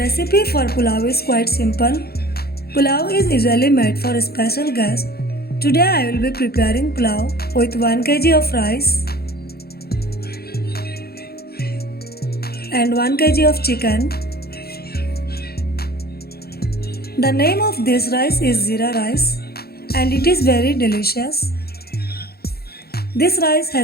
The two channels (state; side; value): late; right; 0.45 ms